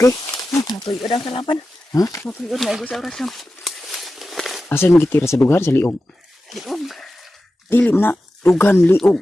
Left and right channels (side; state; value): both; normal; correlation 0.93